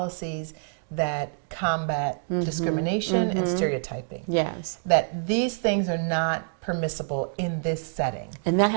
that combat discrimination and stereotyping. Yes. That these things are not permissible in this setting. And that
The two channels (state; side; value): silent; left; digital silence